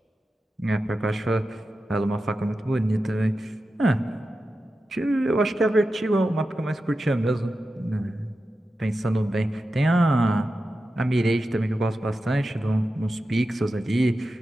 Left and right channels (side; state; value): both; normal; correlation 0.92